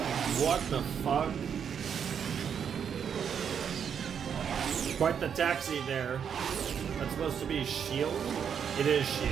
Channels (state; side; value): quieter; left; 7.7 dB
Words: What the fuck? Quite the taxi there. That's supposed to be S.H.I.E.L.D.? It is